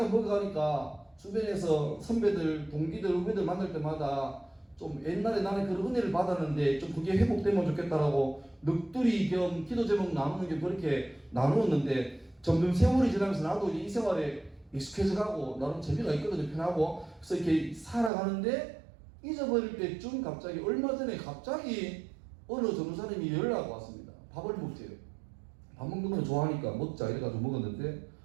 먹어가니까 주변에서 선배들, 동기들, 후배들 만날 때마다 좀 옛날에 나는 그런 은혜를 받았는데 좀 그게 회복되면 좋겠다라고 넋두리 겸 기도 제목 나누는 게 그렇게 나누었는데 점점 세월이 지나면서 나도 이제 이 생활에 익숙해져 가고 나름 재미가 있거든요. 편하고. 그래서 이렇게 살아가는데 잊어버릴 때쯤 갑자기 얼마 전에 갑자기 어느 전도사님이 연락이 왔습니다. 밥을 먹재요. 밥 먹는 걸 좋아하니까 먹자 이래가지고 먹었는데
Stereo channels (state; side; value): drops out; left; at 18.1 s